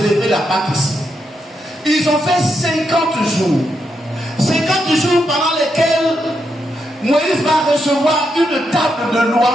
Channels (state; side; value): normal; both; correlation 0.82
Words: la Pâque ici. Ils ont fait 50 jours. 50 jours pendant lesquels Moïse va recevoir une table de